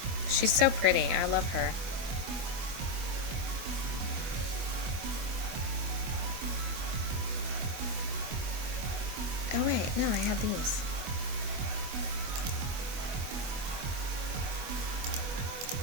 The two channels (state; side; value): late; left; 24 ms